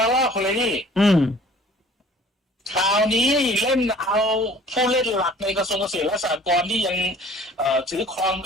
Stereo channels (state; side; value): normal; both; correlation 0.50